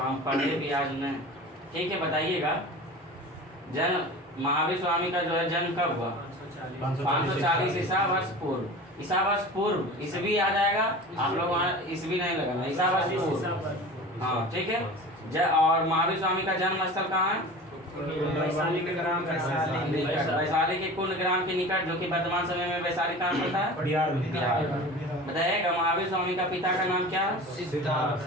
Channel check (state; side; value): normal; both; correlation 0.36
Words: पढ़े भी आज नहीं। ठीक है, बताइएगा जन्म महावीर स्वामी का जो है जन्म कब हुआ? 540 ईसा वर्ष पूर्व। ईसा वर्ष पूर्व, ईसवी याद आएगा आप लोग, वहाँ ईसवी नहीं लगाना, ईसा वर्ष पूर्व। हाँ ठीक है, और महावीर स्वामी का जन्म स्थल कहाँ है? वैशाली के ग्राम वैशाली वैशाली के कुंड ग्राम के निकट, जो कि वर्तमान समय में वैशाली कहाँ पड़ता है? बिहार। बताइएगा महावीर स्वामी का पिता का नाम क्या है? सिद्धार्थ।